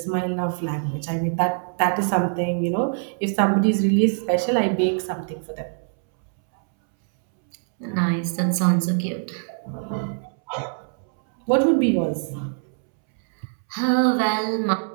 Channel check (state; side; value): silent; left; 63 dB below the other